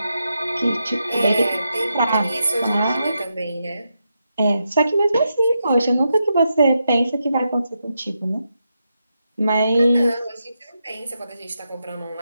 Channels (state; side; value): inverted; both; correlation -0.85